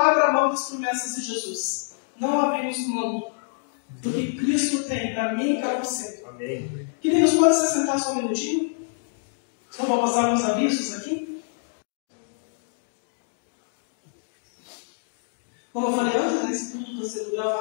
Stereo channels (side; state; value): right; silent; digital silence